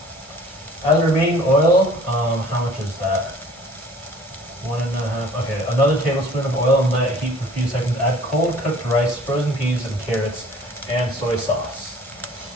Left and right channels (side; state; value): both; normal; correlation 0.51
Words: As remaining oil, how much is that? 1.5. Okay, another tablespoon of oil and let it heat for a few seconds. Add cold cooked rice, frozen peas, and carrots, and soy sauce.